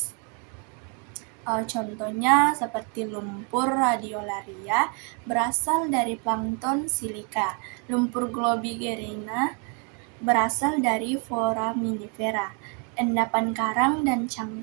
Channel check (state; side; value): quieter; left; 36.8 dB